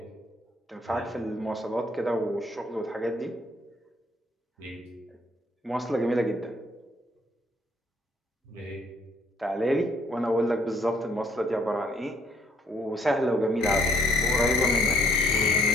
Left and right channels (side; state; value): both; normal; correlation 0.65